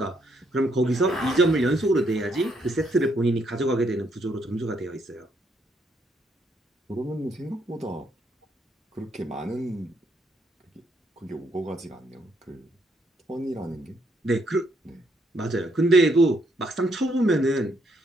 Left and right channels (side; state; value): both; normal; correlation 0.73